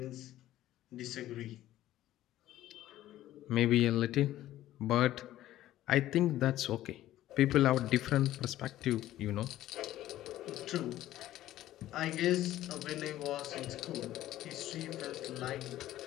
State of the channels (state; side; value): quieter; right; 14.1 dB